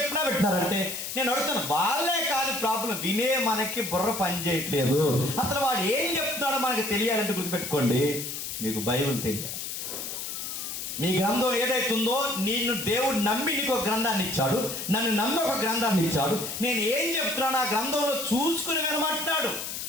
పెట్టినారు. అంటే నేను అడుగుతాను, వాళ్ళే కాదు ప్రాబ్లం, వినే మనకి బుర్ర పని చేయట్లేదు. అసలు వాడు ఏం చెప్తున్నాడో మనకి తెలియాలంటే గుర్తుపెట్టుకోండి, మీకు బైబిల్ తెలియాలి. నీ గ్రంథం ఏదైతుందో, నిన్ను దేవుడు నమ్మి నీకు ఒక గ్రంథాన్ని ఇచ్చాడు, నన్ను నమ్మి ఒక గ్రంథాన్ని ఇచ్చాడు. నేను ఏం చెప్తున్నాను ఆ గ్రంథంలో చూసుకుని వినమంటున్నాడు.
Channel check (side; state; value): left; noise; hiss, 6 dB below the sound